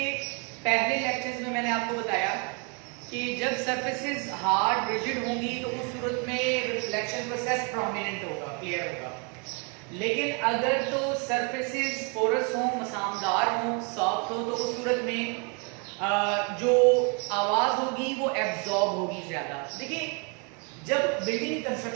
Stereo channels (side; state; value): left; quieter; 35.0 dB